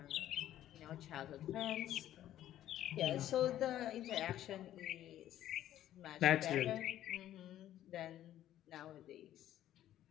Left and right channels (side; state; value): right; quieter; 12.5 dB